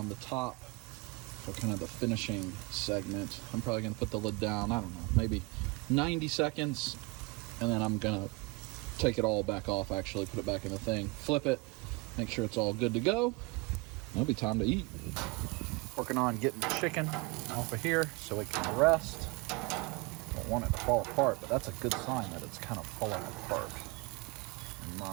the top for kind of the finishing segment. I'm probably going to put the lid down, I don't know, maybe 90 seconds, and then I'm going to take it all back off, actually put it back in the thing, flip it, make sure it's all good to go. It'll be time to eat. Working on getting the chicken off of here so it can rest. Don't want it to fall apart, but that's a good sign that it's kind of falling apart, in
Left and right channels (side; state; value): left; quieter; 27.5 dB